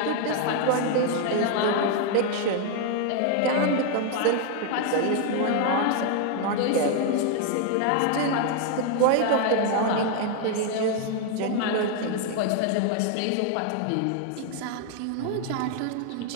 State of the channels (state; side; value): different; both; correlation 0.00